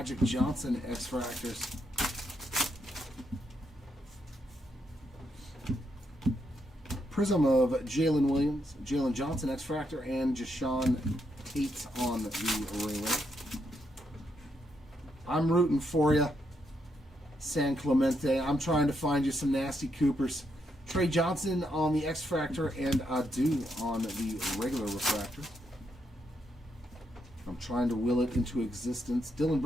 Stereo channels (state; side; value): normal; both; correlation 0.79